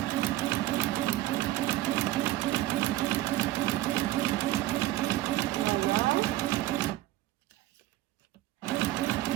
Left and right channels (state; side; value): quieter; left; 15.7 dB